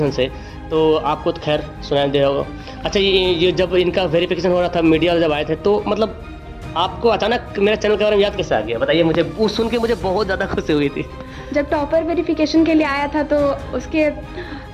से, तो आपको तो खैर सुनाई दे होगा। अच्छा, ये जब इनका वेरिफिकेशन हो रहा था, मीडिया जब आए थे, तो मतलब आपको अचानक मेरे चैनल के बारे में याद कैसे आ गया, बताइए मुझे। वो सुन के मुझे बहुत ज़्यादा खुशी हुई थी। जब टॉपर वेरिफिकेशन के लिए आया था तो उसके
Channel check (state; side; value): identical; both; correlation 1.00